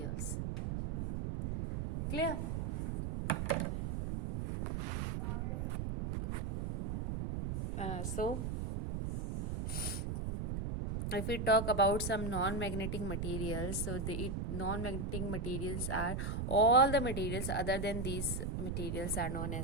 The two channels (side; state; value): right; noise; rumble, 2 dB below the sound